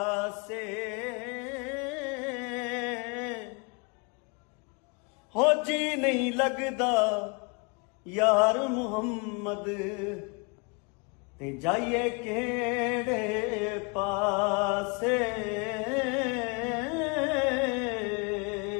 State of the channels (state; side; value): quieter; right; 32.0 dB